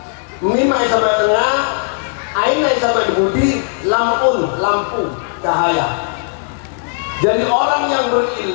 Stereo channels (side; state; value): right; silent; digital silence